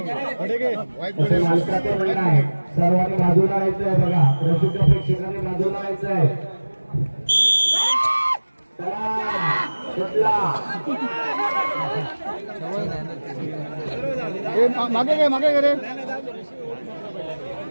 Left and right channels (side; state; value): both; inverted; correlation -1.00